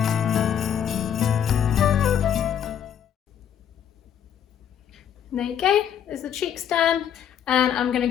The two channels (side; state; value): right; quieter; 9.1 dB